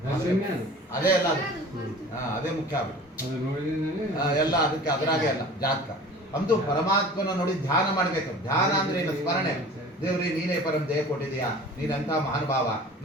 ಅದೇ ಅಲ್ಲ, ಅದೇ ಮುಖ್ಯ ಆಗ್ಬಿಟ್ಟು ಎಲ್ಲ ಅದಕ್ಕೆ ಅದರಾಗೆ ಅಲ್ಲ ಜಾತಕ. ಅಂತೂ ಪರಮಾತ್ಮನ ನೋಡಿ ಧ್ಯಾನ ಮಾಡ್ಬೇಕು. ಧ್ಯಾನ ಅಂದ್ರೆ ಏನು? ಸ್ಮರಣೆ. ದೇವ್ರಿ ನೀನೇ ಪರಂ ದೇಹ ಕೊಟ್ಟಿದೀಯಾ, ನೀನಂತ ಮಹಾನುಭಾವ,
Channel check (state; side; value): normal; both; correlation 0.42